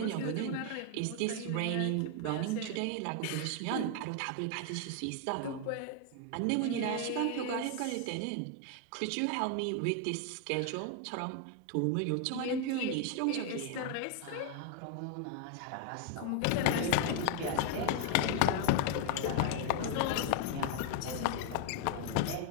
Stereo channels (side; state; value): both; different; correlation 0.00